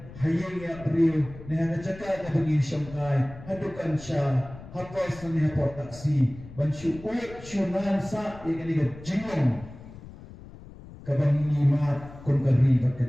hayang ya priyo neha jaka ka bagi syamkai hadukan sya hapas ni hapot taksi ban syuut syunan sa ya kani ka jingong kabangi mat kun kari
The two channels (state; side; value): noise; left; rumble, 17 dB below the sound